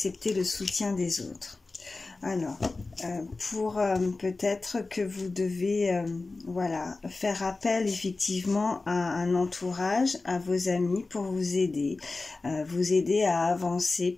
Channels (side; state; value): right; quieter; 3.5 dB